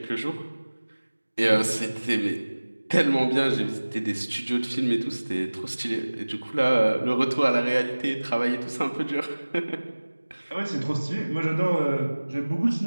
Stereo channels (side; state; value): both; inverted; correlation -1.00